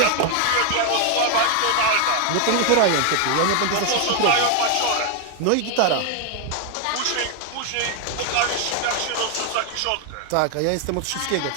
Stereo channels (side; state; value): both; different; correlation 0.01